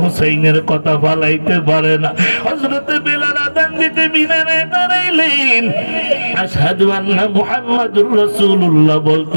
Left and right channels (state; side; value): inverted; both; correlation -1.00